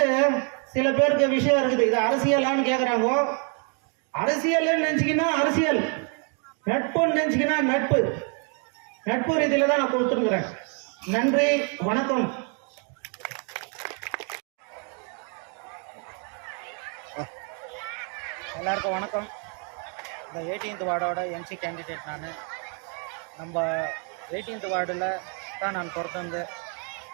சில பேருக்கு விஷயம் இருக்குது. இது அரசியலான்னு கேட்குறாங்க. அரசியல் நினைச்சிக்கினா அரசியல், நட்புன்னு நினைச்சிக்கினா நட்பு. நட்பு ரீதியில தான் நான் கொடுத்துருக்கிறேன். நன்றி, வணக்கம். எல்லாருக்கும் வணக்கம். இந்த 18th வார்டோட எம்சி கேண்டிடேட் நான். நம்ம 18th வார்டில் தான் நான் பிறந்து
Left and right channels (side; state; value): left; quieter; 39.4 dB